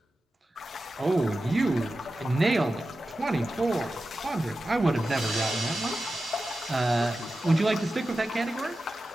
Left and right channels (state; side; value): normal; both; correlation 0.93